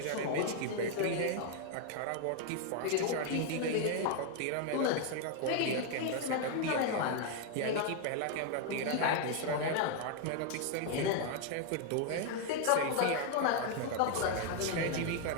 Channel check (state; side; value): different; both; correlation 0.00